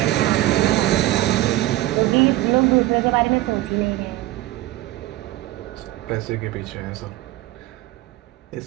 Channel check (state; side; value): quieter; left; 16.3 dB